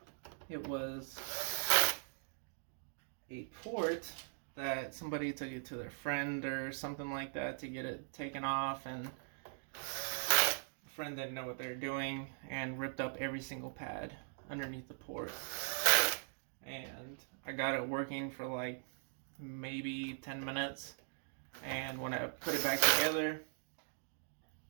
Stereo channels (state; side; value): silent; left; digital silence